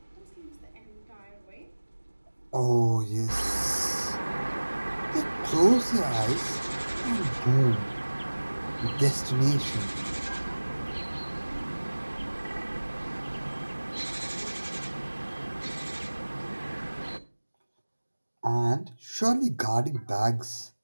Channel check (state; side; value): inverted; both; correlation -1.00